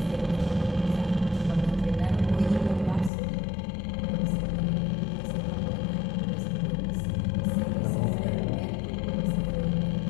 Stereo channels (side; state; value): right; drops out; at 3.1 s